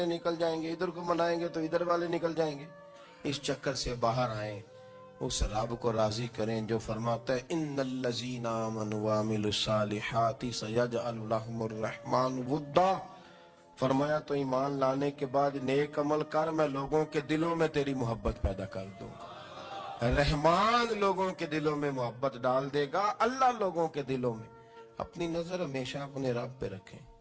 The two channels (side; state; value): both; identical; correlation 1.00